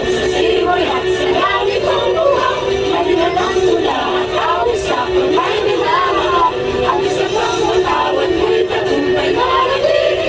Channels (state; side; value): identical; both; correlation 1.00